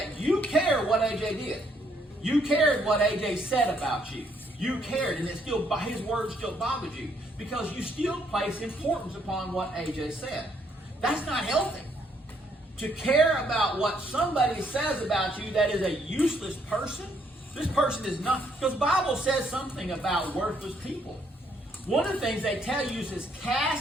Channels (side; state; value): both; normal; correlation 0.70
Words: you cared what AJ did. You cared what AJ said about you. You cared, and his words still bothered you, because you still place importance upon what AJ said. That's not healthy. To care about what somebody says about you that is a useless person, this person is not, because the Bible says something about worthless people. One of the things they tell you is